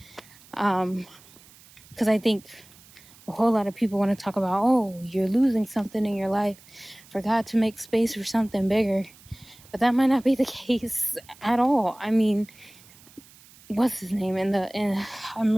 because I think a whole lot of people want to talk about, oh, you're losing something in your life for God to make space for something bigger. But that might not be the case at all. I mean, what's his name? I'm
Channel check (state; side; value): noise; right; hiss, 24 dB below the sound